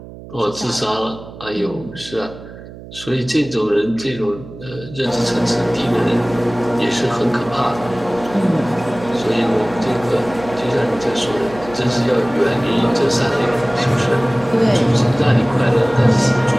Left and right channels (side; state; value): right; noise; hum, 16 dB below the sound